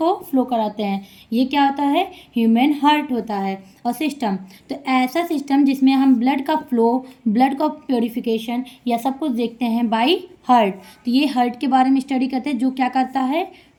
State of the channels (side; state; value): both; identical; correlation 1.00